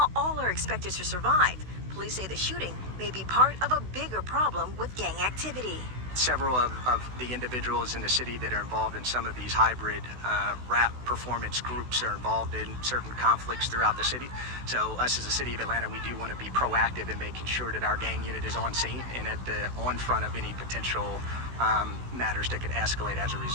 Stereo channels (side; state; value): left; late; 16 ms